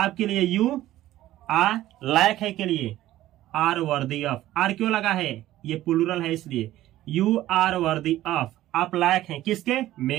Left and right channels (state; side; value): quieter; left; 14.6 dB